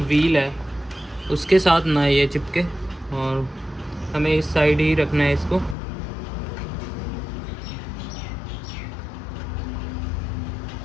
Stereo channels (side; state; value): right; drops out; at 5.8 s